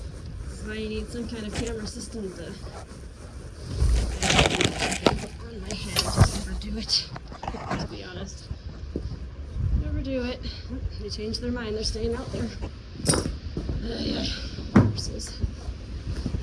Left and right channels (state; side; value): identical; both; correlation 1.00